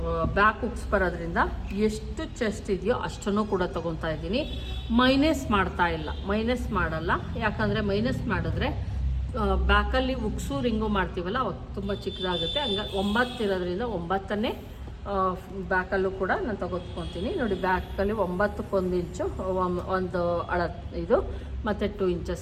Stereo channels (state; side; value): identical; both; correlation 1.00